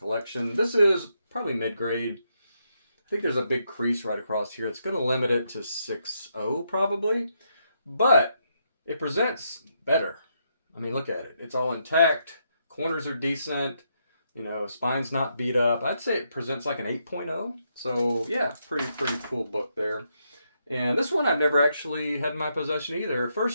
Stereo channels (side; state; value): both; inverted; correlation -0.79